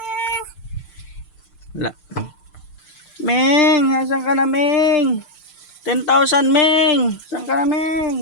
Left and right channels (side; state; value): right; late; 6.7 ms